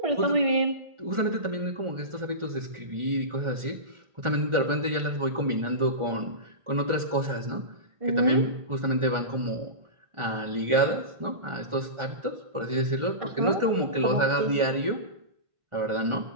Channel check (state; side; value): late; left; 1.4 ms